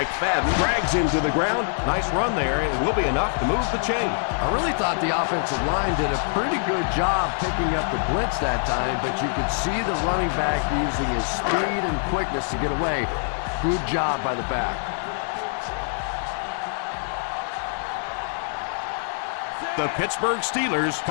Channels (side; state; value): right; silent; digital silence